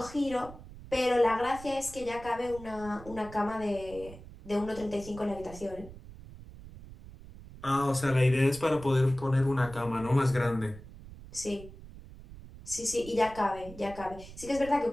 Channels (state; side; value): noise; right; rumble, 16 dB below the sound